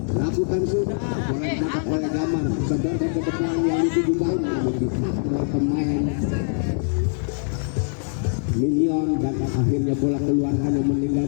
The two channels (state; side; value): silent; right; digital silence